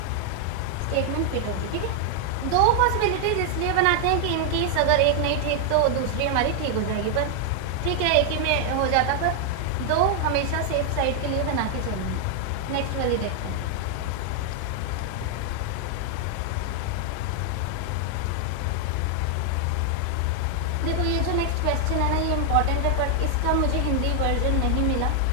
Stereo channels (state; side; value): different; both; correlation 0.00